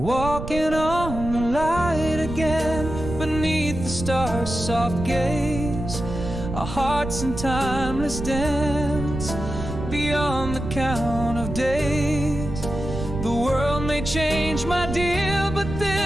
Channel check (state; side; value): noise; right; rumble, 7 dB below the sound